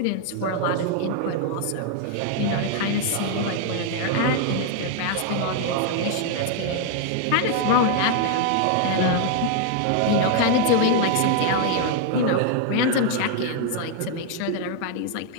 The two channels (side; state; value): both; different; correlation 0.00